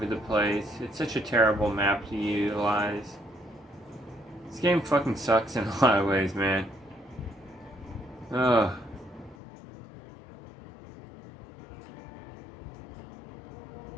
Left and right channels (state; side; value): drops out; right; at 9.3 s